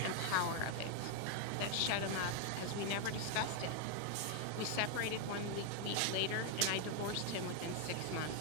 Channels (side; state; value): both; different; correlation 0.01